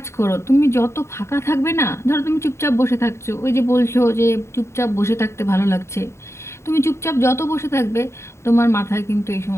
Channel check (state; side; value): late; right; 0.13 ms